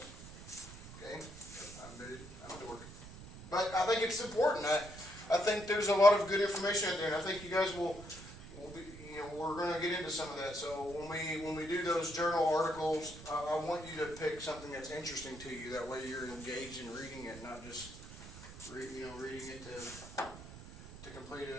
Okay, I'm a dork, but I think it's important. I think there's a lot of good information out there, and I think you guys will be. You know, we're going to get into some of that. So when we do those journal articles, I want you to pick something that's interesting to you. That way, you're engaged in reading it, not just reading it to complete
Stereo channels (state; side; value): noise; right; rumble, 15 dB below the sound